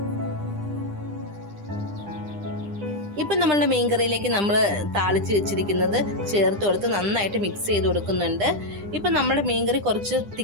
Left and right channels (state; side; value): late; left; 9.9 ms